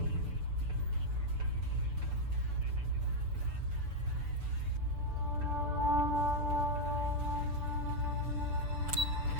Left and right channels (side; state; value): left; late; 6.9 ms